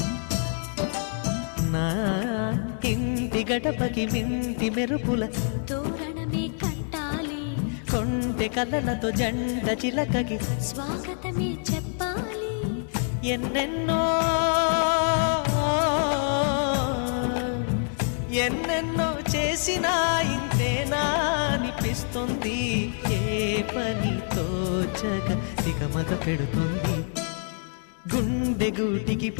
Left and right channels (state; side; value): silent; right; 61 dB below the other